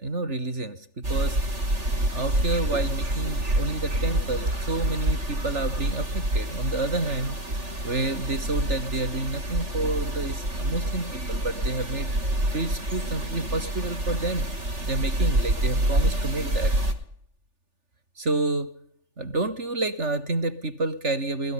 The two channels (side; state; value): left; late; 3.4 ms